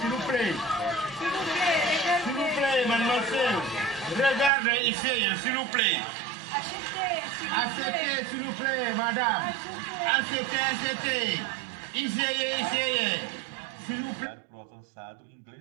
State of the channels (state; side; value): drops out; left; at 4.5 s